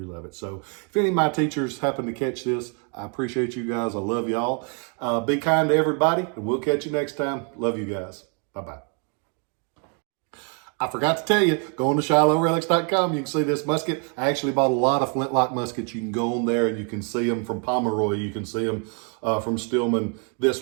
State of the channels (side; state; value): left; quieter; 38.3 dB